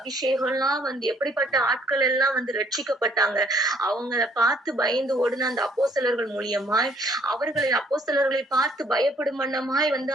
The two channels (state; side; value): normal; both; correlation 0.63